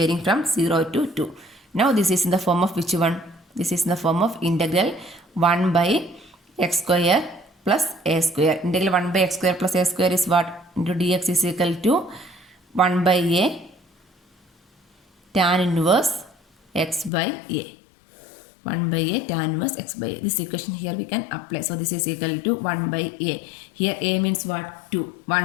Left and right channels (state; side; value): drops out; right; at 17.1 s